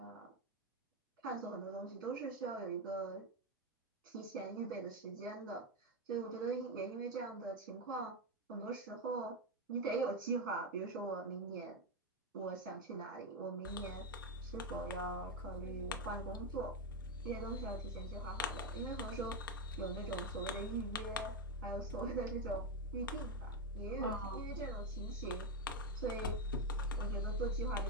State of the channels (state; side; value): normal; both; correlation 0.08